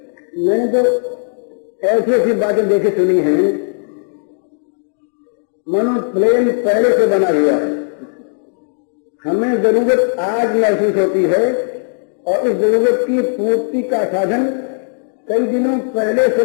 मैंने तो ऐसी ऐसी बातें देखी सुनी हैं, मनो प्लेन पहले से बना हुआ है, हमें जरूरत आज महसूस होती है और उस जरूरत की पूर्ति का साधन कई दिनों पहले से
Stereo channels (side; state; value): right; silent; digital silence